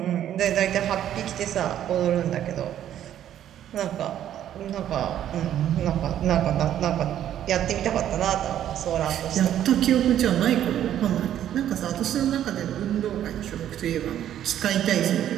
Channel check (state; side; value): quieter; left; 11.0 dB